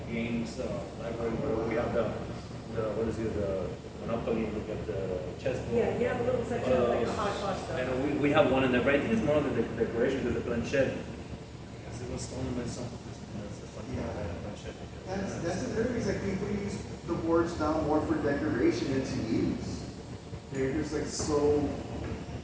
games library where we have the what is it, the Monopoly, we got the chessboard. Yeah, you have a little section of like a hodgepodge stuff. And we have one in there, but I think it's more of the decoration because the planchette. Because it was stolen by some. That's the funny part about the planchette. That's another reason like people use the boards now more for decoration than to use. They're just like so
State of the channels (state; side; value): identical; both; correlation 1.00